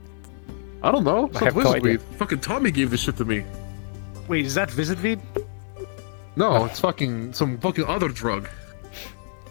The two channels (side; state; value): right; silent; digital silence